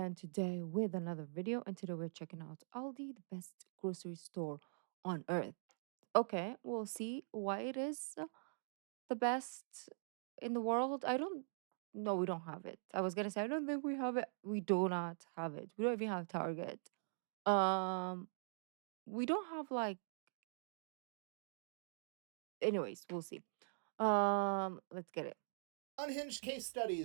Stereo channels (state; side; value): silent; left; digital silence